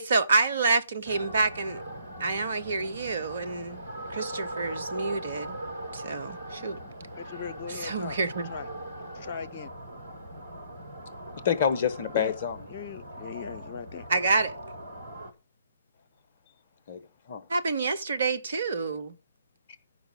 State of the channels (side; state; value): both; inverted; correlation -0.68